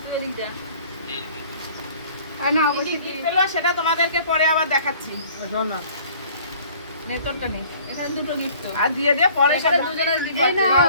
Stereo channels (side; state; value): both; inverted; correlation -0.53